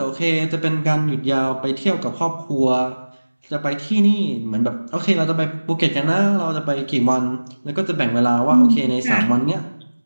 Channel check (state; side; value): inverted; both; correlation -1.00